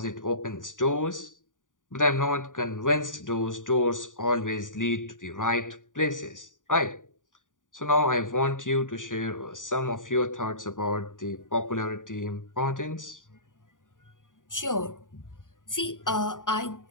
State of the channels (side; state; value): right; late; 0.88 ms